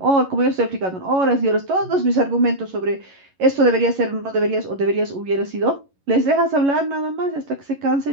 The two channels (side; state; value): left; late; 11 ms